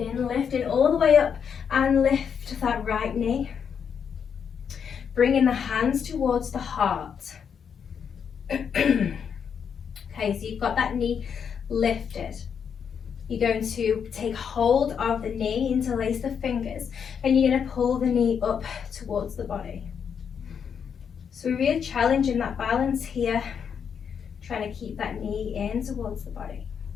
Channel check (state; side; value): quieter; right; 7.2 dB